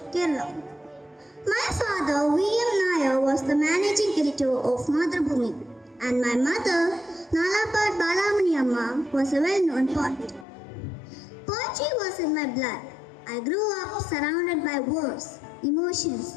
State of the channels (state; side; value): drops out; right; at 10.5 s